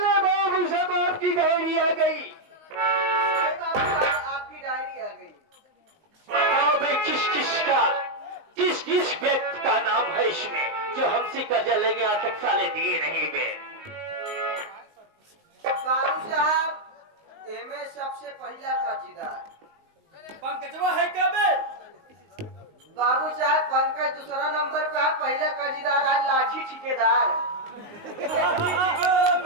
बाबू साहब आपकी डायरी आ गई। बाबू साहब आपकी डायरी आ गई। बताओ भाई किस किस व्यक्ति का नाम है इसमें जो हमसे कर्जा लेके आज तक साले दिए नहीं गए? बाबू साहब एमे सबसे पहला कर्जदार पंकजवा है क्या बे? बाबू साहब पंकज दूसरा नंबर पे है, पहला कर्जदार है लाठी ठेकेदार। मेरा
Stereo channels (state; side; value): late; left; 19 ms